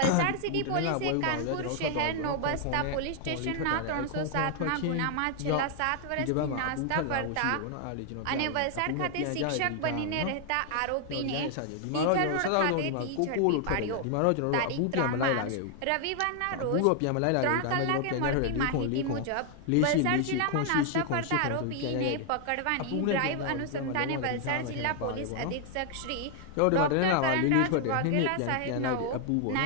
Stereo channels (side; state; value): both; different; correlation 0.00